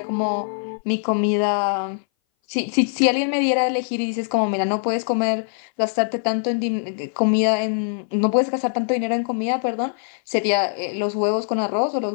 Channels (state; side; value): silent; right; 60 dB below the other